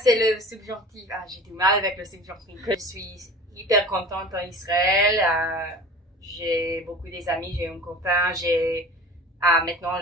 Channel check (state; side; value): normal; both; correlation 0.39